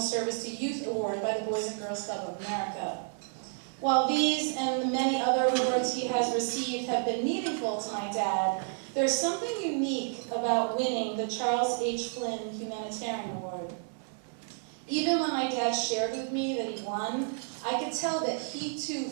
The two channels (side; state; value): left; silent; 57 dB below the other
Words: Service to Youth Award by the Boys and Girls Club of America. While these and the many other awards he has received have been meaningful to my dad, there's something unique about winning the Charles H. Flynn Humanitarian Award. Even when my dad shared with me that he won, I could tell that he too